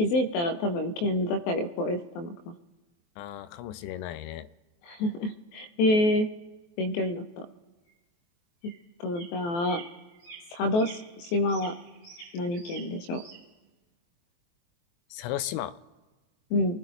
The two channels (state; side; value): late; right; 24 ms